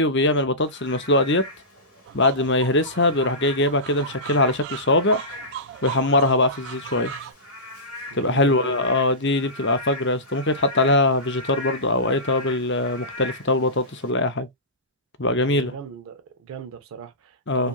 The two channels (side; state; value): both; normal; correlation -0.20